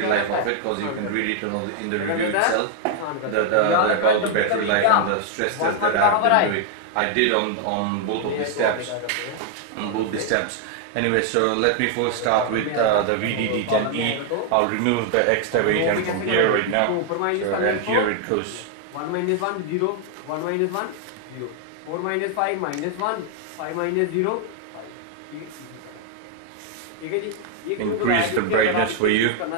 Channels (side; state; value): both; different; correlation 0.00